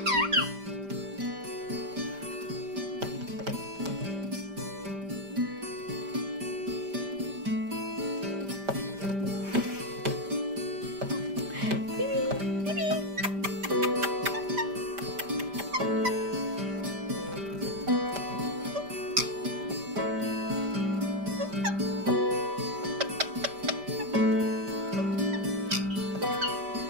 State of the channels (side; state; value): left; late; 5.1 ms